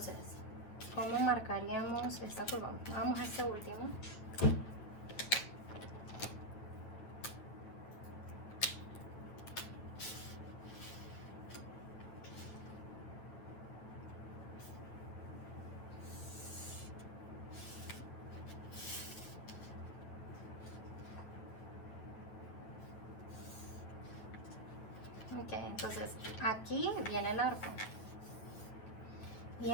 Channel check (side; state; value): right; late; 9.4 ms